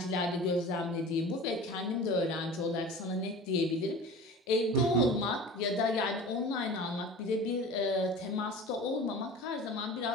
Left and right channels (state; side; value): normal; both; correlation 0.38